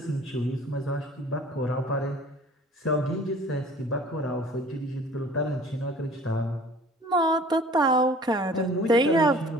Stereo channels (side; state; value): both; normal; correlation 0.48